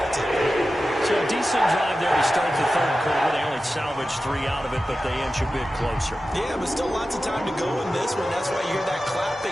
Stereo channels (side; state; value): both; normal; correlation 0.93